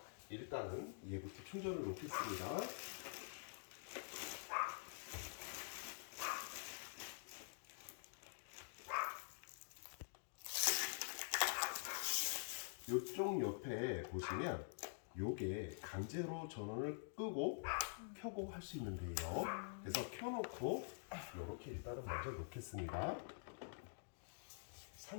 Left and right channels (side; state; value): right; silent; digital silence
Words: 일단은 얘부터 충전을 놓겠습니다. 이쪽 옆에 보시면 요게 강제로 전원을 끄고 켜고 할 수 있는데요. 그래서 켜놓고 이렇게 일단은 먼저 놓겠습니다.